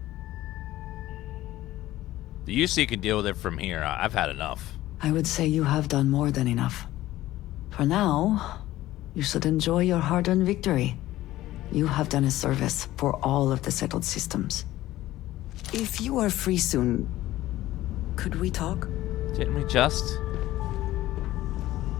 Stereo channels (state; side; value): quieter; right; 15.6 dB